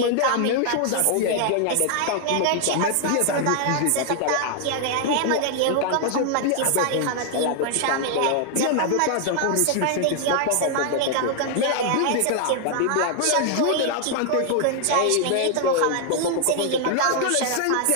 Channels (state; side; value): different; both; correlation 0.00